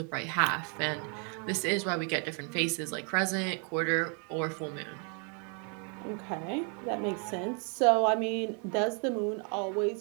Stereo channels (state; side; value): quieter; left; 38.8 dB